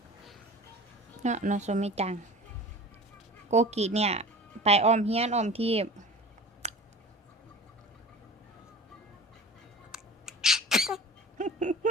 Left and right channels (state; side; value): normal; both; correlation 0.38